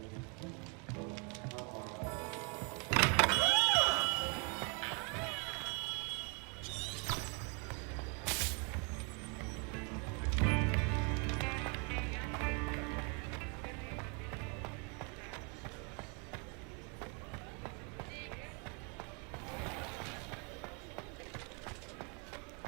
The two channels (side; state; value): left; quieter; 34.8 dB